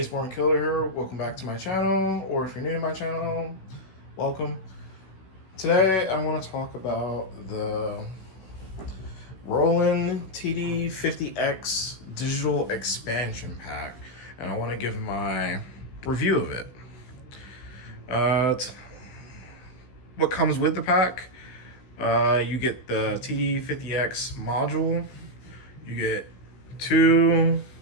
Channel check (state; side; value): late; right; 16 ms